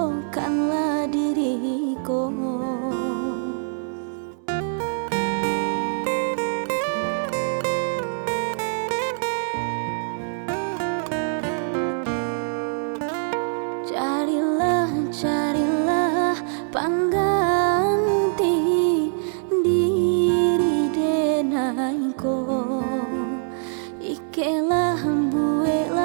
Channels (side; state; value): left; silent; 63 dB below the other